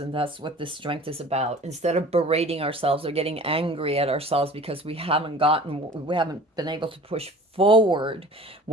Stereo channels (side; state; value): both; normal; correlation 0.44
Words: that's what this strength is about. Instead of berating ourselves or getting angry at ourselves because we haven't been able to push forward